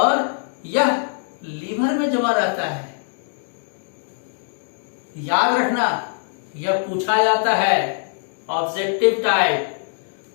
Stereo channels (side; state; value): right; silent; digital silence